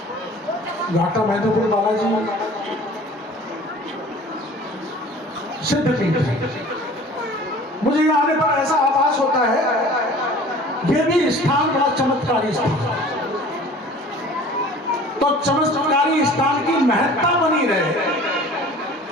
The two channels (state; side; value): normal; both; correlation 0.45